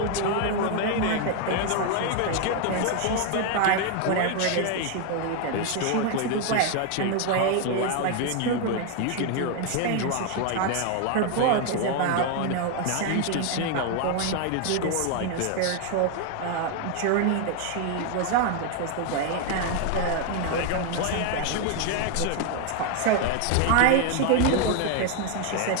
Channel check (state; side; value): different; both; correlation 0.01